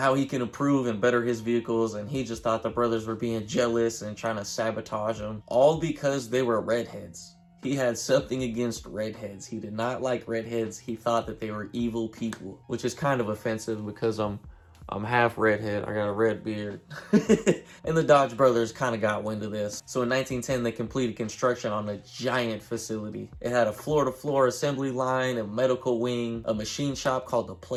he can improve and better his vehicles, and he just thought the brothers were being jealous and trying to sabotage him, all because they were redheads. He had something against redheads. He did not like redheads. He thought that they were evil people, which is kind of offensive because I'm half redhead. I got a red beard. And the Dodge brothers kind of got wind of this. So in 1910, they completed construction on a giant facility. It had a floor-to-floor assembly line, a medical wing, a machine shop called the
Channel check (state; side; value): identical; both; correlation 1.00